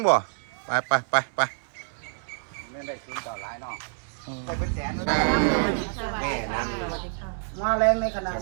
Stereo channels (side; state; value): left; silent; 58 dB below the other